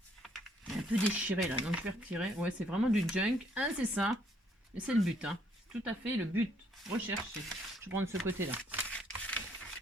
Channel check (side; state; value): both; normal; correlation 0.67